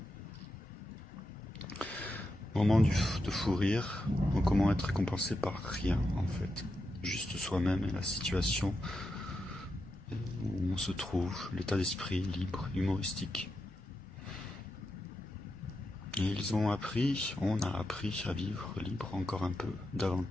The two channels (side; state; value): both; normal; correlation 0.86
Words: Moment de fou rire, comment être récompensé par rien en fait. juste soi-même et la situation où on se trouve, l'état d'esprit libre, humoristique. Et on a appris à vivre libre encore un peu,